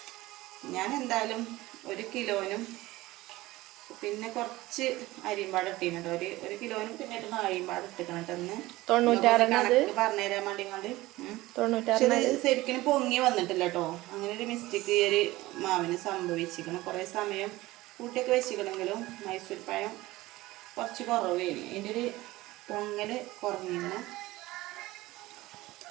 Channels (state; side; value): quieter; left; 18.5 dB